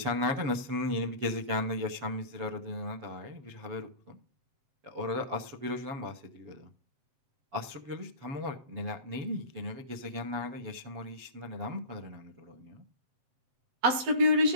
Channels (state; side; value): late; left; 7.6 ms